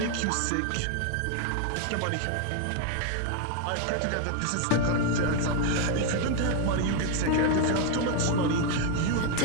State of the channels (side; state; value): both; different; correlation 0.01